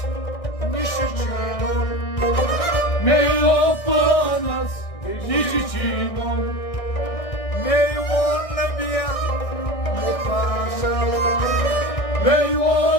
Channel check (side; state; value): right; late; 1.6 ms